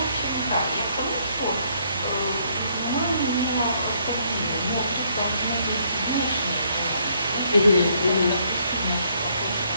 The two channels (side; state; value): both; inverted; correlation -0.69